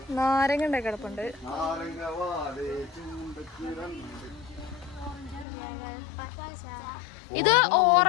നാരങ്ങ ഉണ്ടായി കിടപ്പുണ്ട്. ഇത്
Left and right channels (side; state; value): right; drops out; at 5.5 s